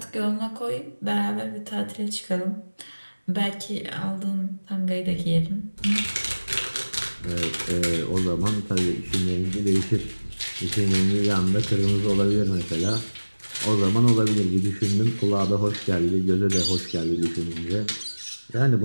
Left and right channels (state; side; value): inverted; both; correlation -1.00